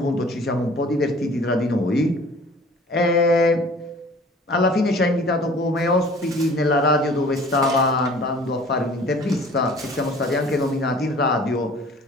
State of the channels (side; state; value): both; normal; correlation 0.49